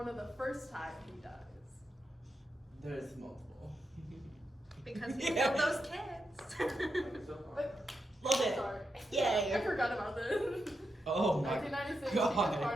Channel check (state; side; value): normal; both; correlation 0.86